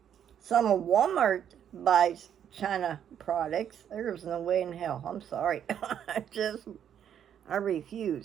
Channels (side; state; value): left; quieter; 9.2 dB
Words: of Walmart buys China products. There's no way in hell. I'm sorry. I